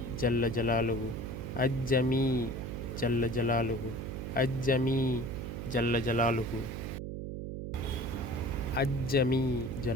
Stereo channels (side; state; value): right; noise; hum, 6 dB below the sound